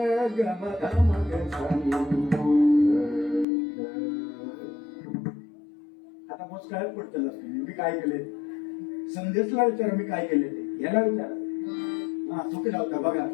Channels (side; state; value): right; drops out; at 3.5 s